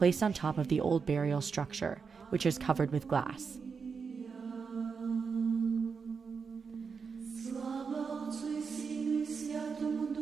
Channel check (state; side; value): quieter; left; 5.6 dB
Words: on top of the old burial structure, which is covered with glass.